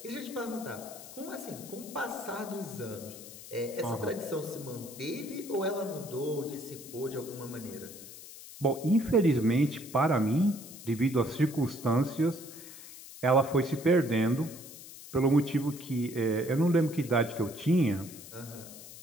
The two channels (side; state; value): left; noise; hiss, 15 dB below the sound